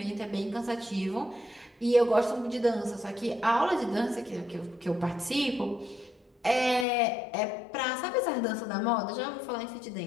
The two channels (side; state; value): right; drops out; at 6.9 s